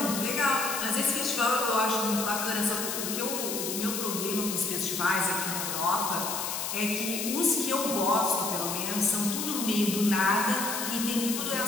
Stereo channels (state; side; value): noise; left; hiss, 3 dB below the sound